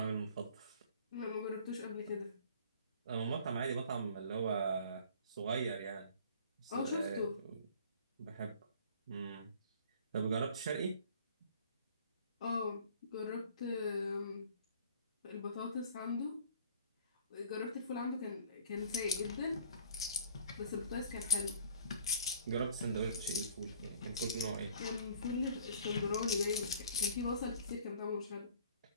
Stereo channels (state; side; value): inverted; both; correlation -0.52